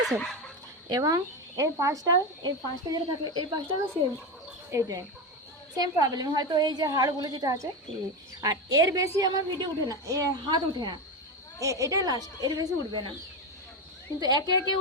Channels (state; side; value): normal; both; correlation 0.17